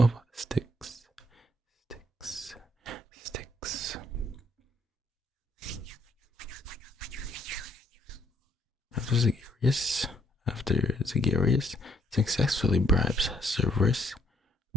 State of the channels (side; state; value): both; normal; correlation 0.68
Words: Styx. After Zagarius successfully bribes Cerberus,